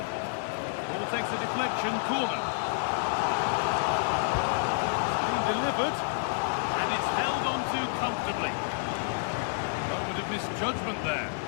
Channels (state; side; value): silent; right; 58 dB below the other